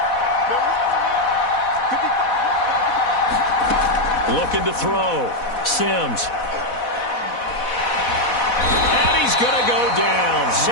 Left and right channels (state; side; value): late; right; 4.1 ms